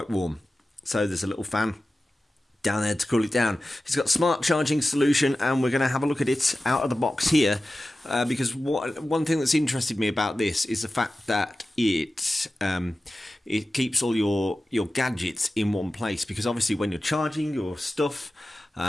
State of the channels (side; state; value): both; normal; correlation 0.95